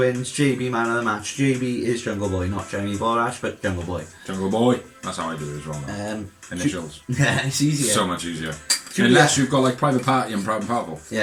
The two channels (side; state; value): both; identical; correlation 1.00